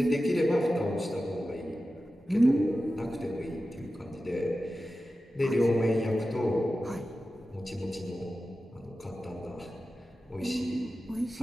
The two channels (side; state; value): both; normal; correlation 0.93